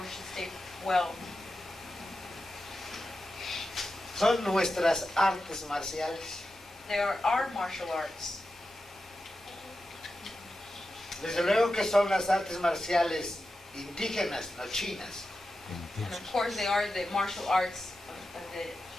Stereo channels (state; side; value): normal; both; correlation 0.91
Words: to stay well. Son nuestras artes marciales. They are our martial arts. Desde luego que son las artes marciales indígenas, no chinas. And of course they are the martial arts,